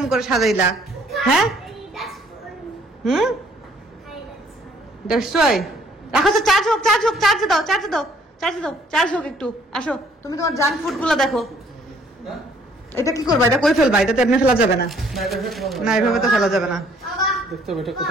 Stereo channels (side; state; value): both; normal; correlation 0.62